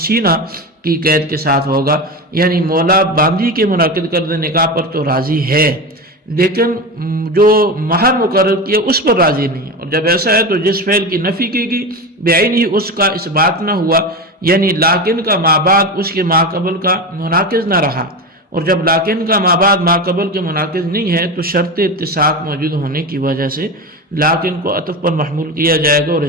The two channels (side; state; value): both; normal; correlation 0.22